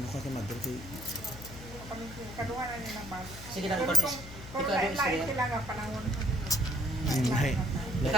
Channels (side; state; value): left; noise; hum, 13 dB below the sound